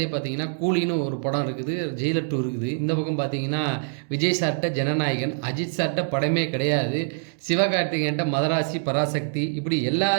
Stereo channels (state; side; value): silent; left; digital silence